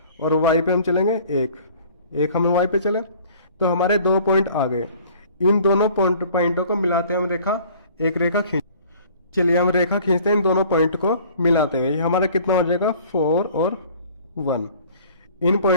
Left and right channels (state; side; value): inverted; both; correlation -0.51